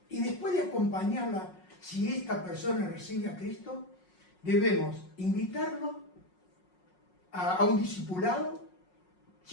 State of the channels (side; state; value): right; late; 5.5 ms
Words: Y después de acompañarla, si esta persona recibe a Cristo, debemos invitarlo a un discipulado.